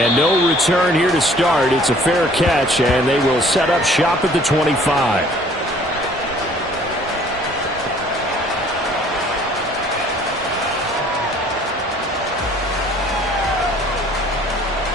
no return here to start. It's a fair catch, and they will set up shop at the 25.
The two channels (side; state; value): both; normal; correlation 0.55